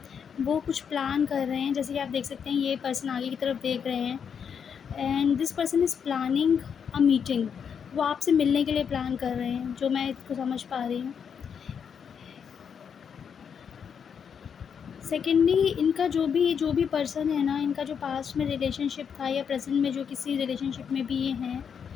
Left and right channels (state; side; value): quieter; right; 7.2 dB